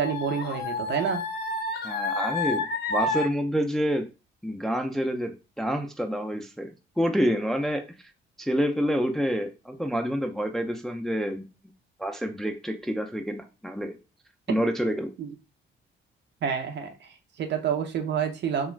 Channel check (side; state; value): both; normal; correlation 0.60